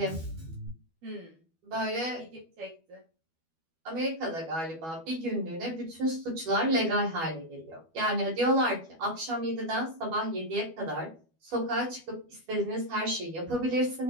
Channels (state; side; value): late; left; 12 ms